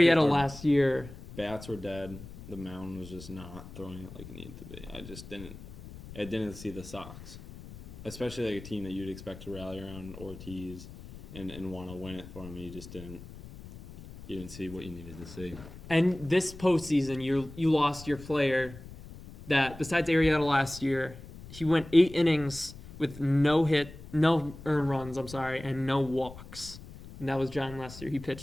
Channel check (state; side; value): noise; left; rumble, 15 dB below the sound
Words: our- last year, Bats were dead. The mound was just not throwing it like it needed to be. I didn't see the Sox, especially like a team that you'd expect to rally around Ortiz and want to win it for him. You just didn't. You didn't see what you needed to see. and this postseason, you lost your player that, besides Arrieta last year, he went 8 innings with no earned runs, and no walks. And that was John Lester. He